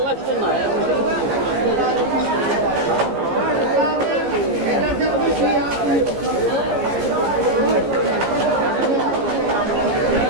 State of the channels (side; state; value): left; late; 15 ms